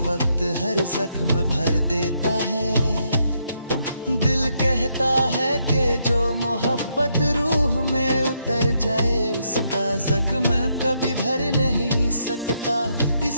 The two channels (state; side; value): inverted; both; correlation -0.77